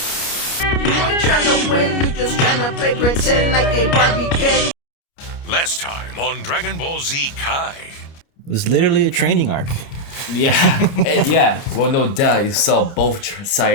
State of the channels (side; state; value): right; late; 29 ms